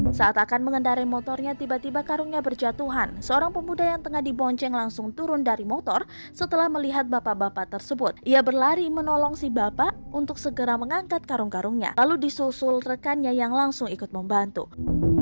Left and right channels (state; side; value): inverted; both; correlation -1.00